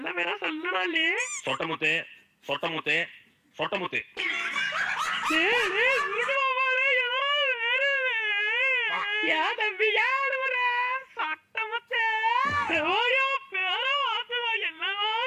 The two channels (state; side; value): identical; both; correlation 1.00